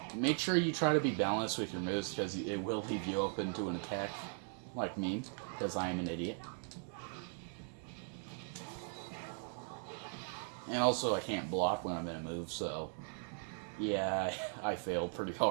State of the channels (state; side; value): silent; left; 52 dB below the other